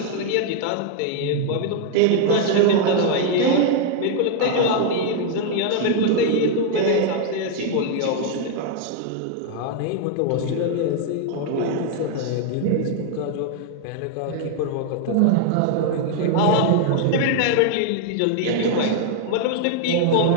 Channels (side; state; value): both; different; correlation 0.00